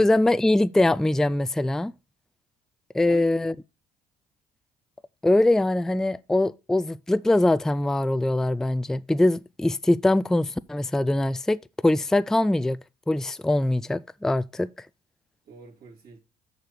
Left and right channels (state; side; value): normal; both; correlation 0.98